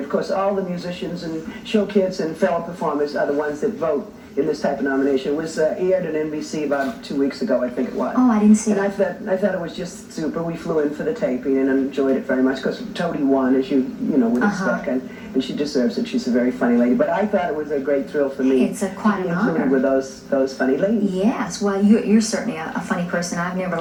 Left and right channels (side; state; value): both; identical; correlation 1.00